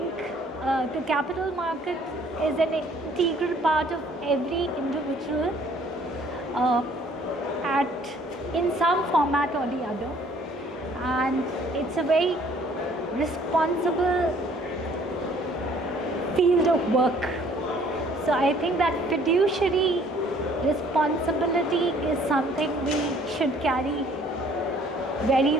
the capital market is an integral part of every individual in some format or the other, and it's a very responsible field of work. So I think that fiduciary responsibility is something we should carry very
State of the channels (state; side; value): normal; both; correlation 0.58